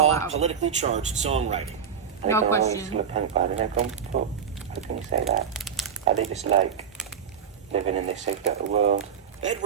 raw, out. politically charged songwriting. No question. How can you say that? Are they just like living in this sick little world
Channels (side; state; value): left; quieter; 7.4 dB